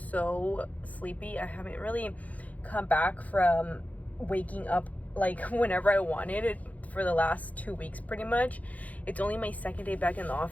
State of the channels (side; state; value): right; late; 0.074 ms